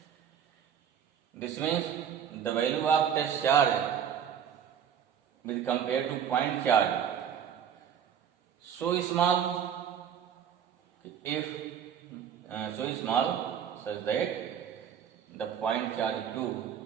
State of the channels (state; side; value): quieter; left; 8.5 dB